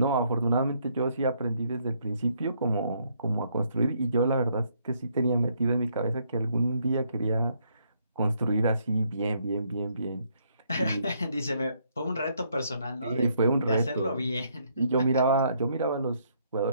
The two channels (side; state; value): both; inverted; correlation -0.71